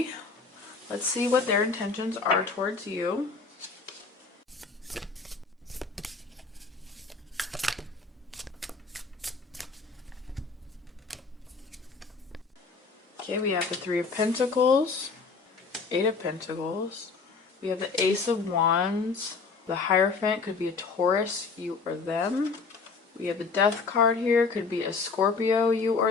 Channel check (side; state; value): right; quieter; 4.5 dB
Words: let's see what their intentions are towards you. Okay, we have the 3 of Pentacles, 8 of Pentacles. We have the Ace of Wands. The Hierophant could be a Taurus, you or them. We have the Death card here, could be a Scorpio, you or